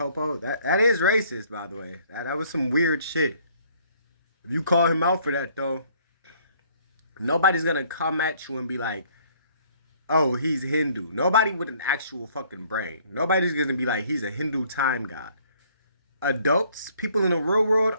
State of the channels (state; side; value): inverted; both; correlation -0.61